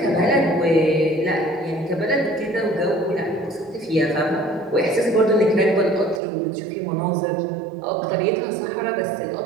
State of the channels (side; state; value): left; drops out; at 6.2 s